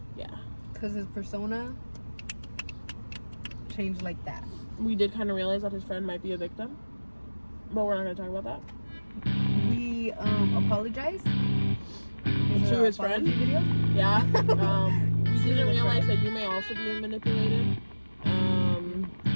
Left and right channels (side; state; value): both; inverted; correlation -1.00